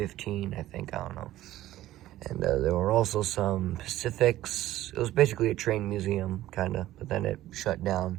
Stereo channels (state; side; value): quieter; left; 14.7 dB